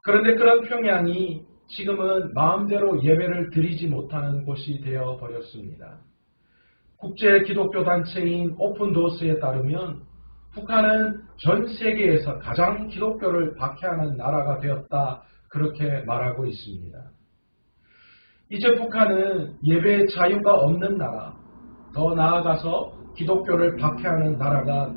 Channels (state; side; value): inverted; both; correlation -1.00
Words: 그런데 그런 평양이 지금은 마음대로 예배를 드리지 못하는 곳이 되어버렸습니다. 국제 기독교 단체인 오픈도어스에 따르면 북한은 전 세계에서 가장 기독교를 박해하는 나라가 되었다, 그렇게 말하고 있습니다. 이제 북한은 예배의 자유가 없는 나라, 더 나아가서 기독교를 박해하는 나라가